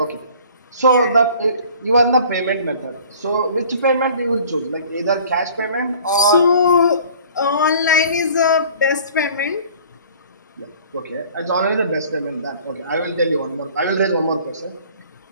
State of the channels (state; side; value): inverted; both; correlation -0.49